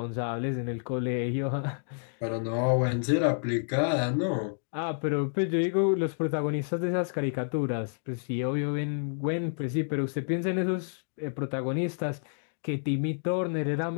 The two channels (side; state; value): right; silent; digital silence